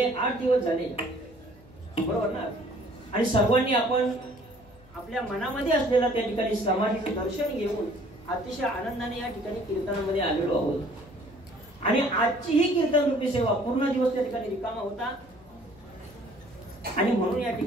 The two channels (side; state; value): left; noise; hum, 25 dB below the sound